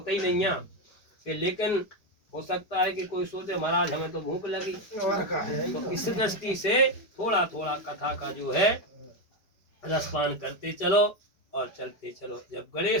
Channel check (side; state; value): right; late; 4.9 ms